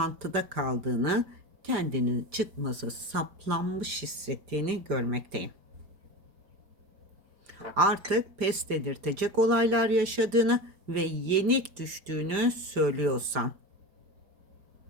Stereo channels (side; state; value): left; late; 5.0 ms